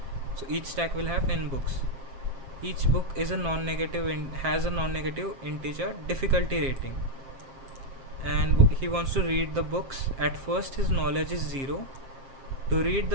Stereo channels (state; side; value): late; left; 7.5 ms